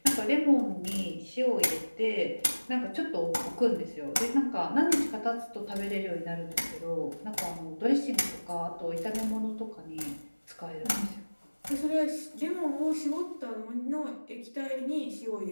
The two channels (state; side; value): inverted; both; correlation -1.00